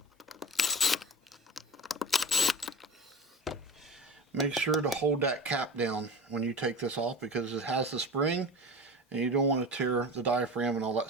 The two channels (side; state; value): both; normal; correlation 0.32